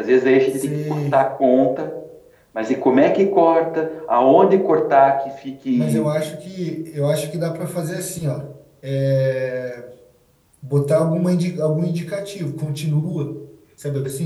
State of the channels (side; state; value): both; identical; correlation 1.00